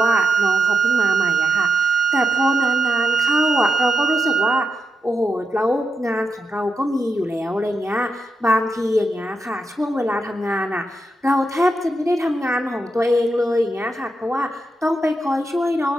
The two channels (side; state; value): both; normal; correlation 0.84